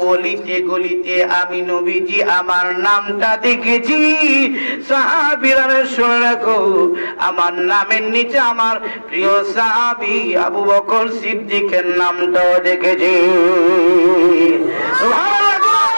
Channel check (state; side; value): inverted; both; correlation -1.00